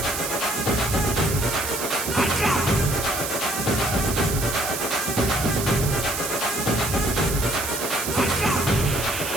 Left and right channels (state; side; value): noise; right; hiss, 4 dB below the sound